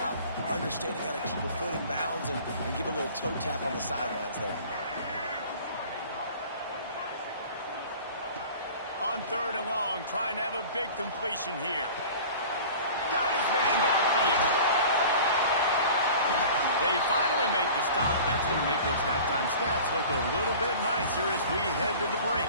understanding how to keep a foot in bounds and give a little toe tap on the sidelines there. On 3rd and long, trying to have a big completion here. Got his man downfield. They finally make the stop. That's going to make those halftime stats look a little bit nicer as we head to the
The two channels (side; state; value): both; inverted; correlation -0.42